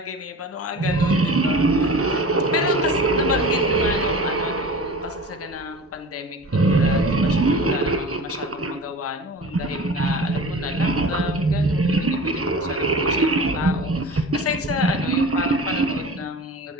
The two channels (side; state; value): both; normal; correlation 0.37